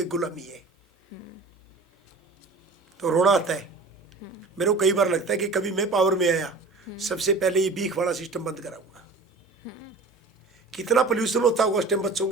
गुलामी है। तो रोना आता है मेरे को, कई बार लगता है कि कभी मैं पावर में आया सबसे पहले ये भीख वाला सिस्टम बंद कराऊंगा। कितना पोल्यूशन होता होगा उस टाइम बच्चों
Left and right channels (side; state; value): left; quieter; 3.6 dB